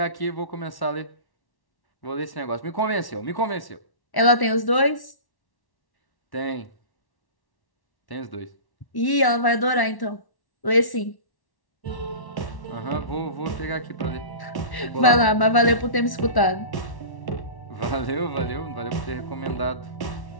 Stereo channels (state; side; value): late; right; 1.1 ms